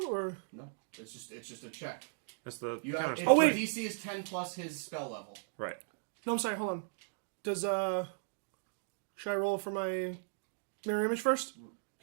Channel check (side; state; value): left; silent; digital silence